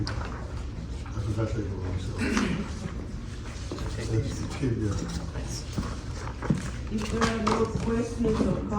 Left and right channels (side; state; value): both; identical; correlation 1.00